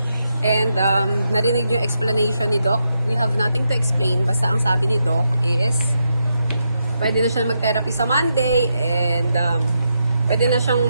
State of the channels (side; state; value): both; inverted; correlation -0.84